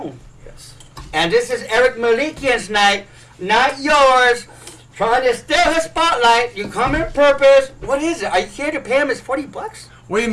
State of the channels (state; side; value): identical; both; correlation 1.00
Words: Yes. And this is Eric Melikian's night, not yours. Trying to steal his spotlight. You come in purpose. What is it? Are you here to pay him his $40? Wait a